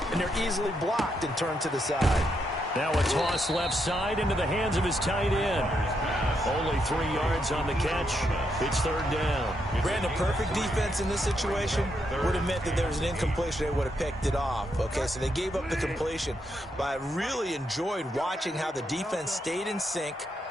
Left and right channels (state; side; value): normal; both; correlation 0.80